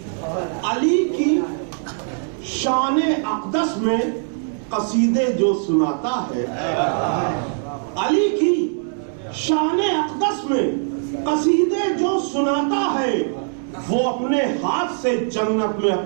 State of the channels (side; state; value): left; silent; 65 dB below the other